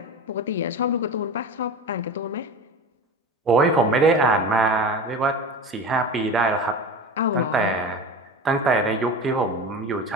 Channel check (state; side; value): normal; both; correlation 0.30